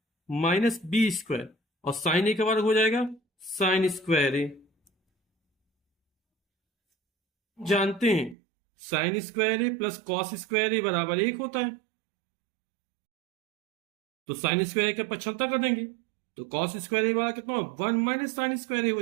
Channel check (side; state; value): left; drops out; at 8.3 s